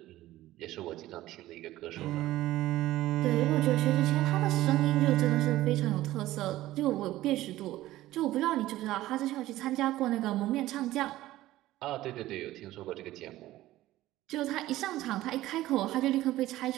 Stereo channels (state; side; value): quieter; left; 15.7 dB